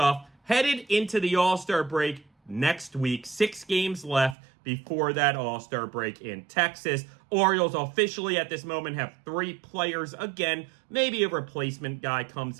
headed into the All-Star break next week. 6 games left before that All-Star break in Texas. Orioles officially at this moment have 3 players. Again, maybe a replacement guy comes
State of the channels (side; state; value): left; drops out; at 4.4 s